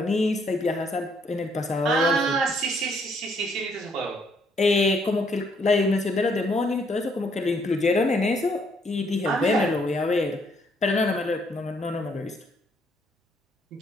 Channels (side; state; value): both; normal; correlation 0.69